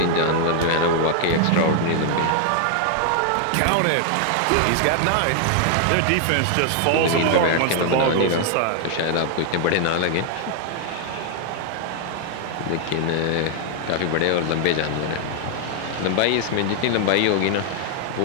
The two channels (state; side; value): different; both; correlation 0.00